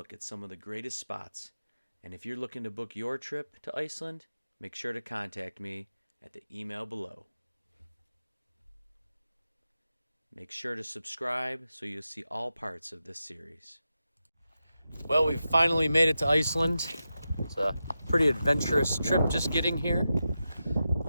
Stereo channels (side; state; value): both; inverted; correlation -0.90